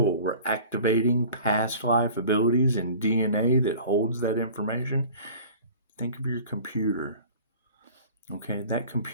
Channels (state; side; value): inverted; both; correlation -0.44